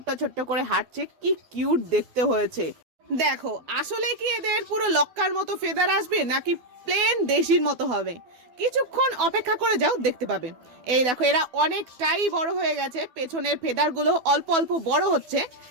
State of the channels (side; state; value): left; late; 12 ms